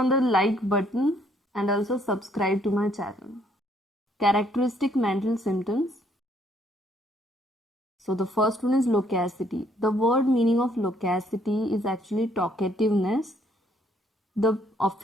the like button and also subscribe to my channel. Characteristic mental symptoms. So the first one is loquacity. The word meaning of loquacity is actually talkativeness. The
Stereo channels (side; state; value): both; normal; correlation 0.67